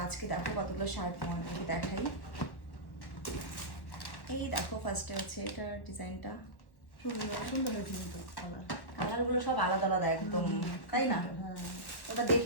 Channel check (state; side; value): late; right; 1.1 ms